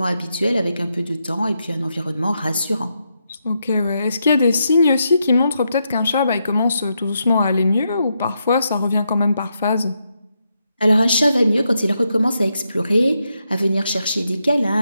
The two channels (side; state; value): both; inverted; correlation -0.82